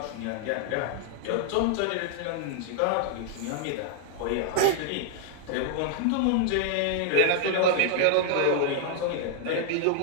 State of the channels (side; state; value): both; different; correlation 0.00